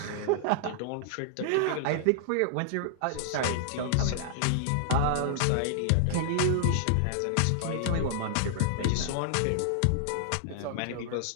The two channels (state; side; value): different; both; correlation -0.01